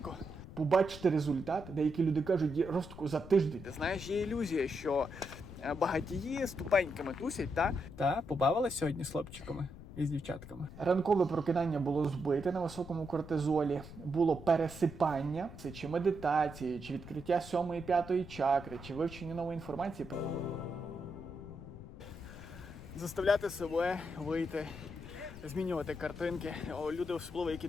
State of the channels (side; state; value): left; noise; rumble, 14 dB below the sound